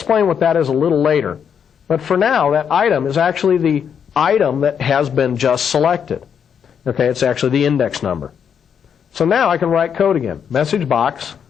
what that is a little later. But for now, that item is actually the item that has been just selected. Okay, it's actually the index number. So now I can write code again. Message box,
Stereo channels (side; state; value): right; quieter; 7.7 dB